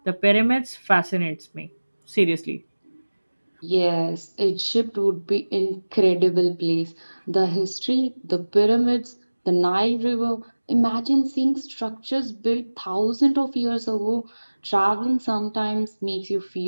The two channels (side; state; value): both; inverted; correlation -1.00